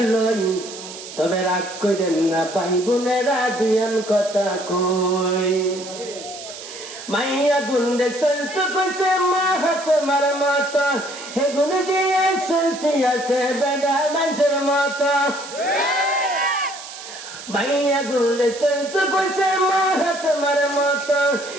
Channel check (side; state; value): right; noise; hiss, 13 dB below the sound